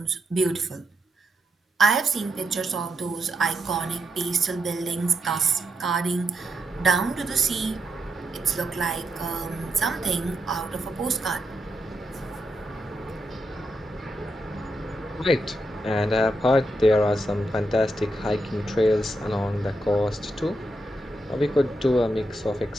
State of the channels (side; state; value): both; normal; correlation 0.83